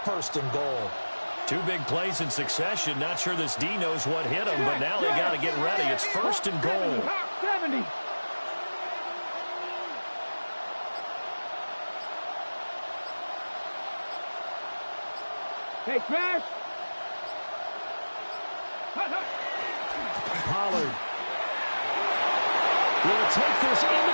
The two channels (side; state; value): both; inverted; correlation -1.00